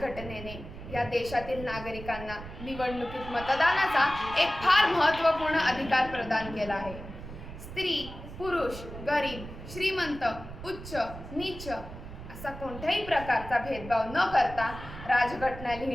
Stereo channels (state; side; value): noise; right; rumble, 12 dB below the sound